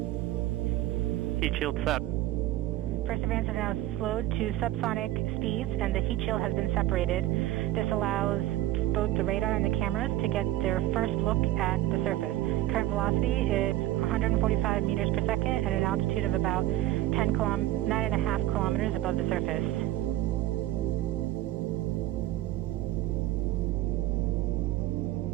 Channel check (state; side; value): quieter; left; 14.9 dB